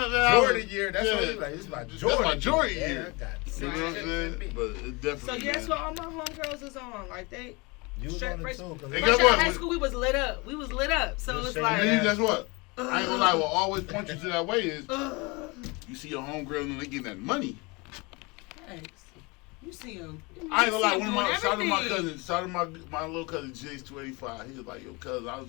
that was- Jordan year. That's what you like. It's my That's Jordan. my Jordan year. year. I got You six know what I'm chips saying? in me. But it So definitely. yeah, that's man. what all my homegirls is on. Like they You was straight on it fresh, too. 'Cause And fresh guess out what? of high school, we was lit up. We was lit up. So Just it's say like, And then guess what? I ain't gonna lie. ugh, What always point you to that way is ugh. you see your homegirl and they getting that money. Thanks. You see him. I ain't gonna lie. One of my shout out to my cousin, shout out to my little cousin Jace 285. He was like, yo, cousin, I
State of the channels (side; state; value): right; quieter; 26.9 dB